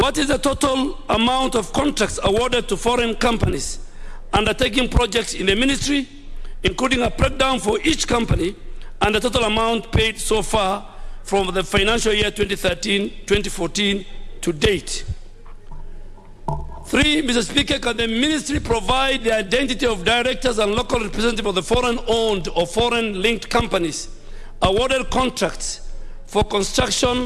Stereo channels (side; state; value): both; identical; correlation 1.00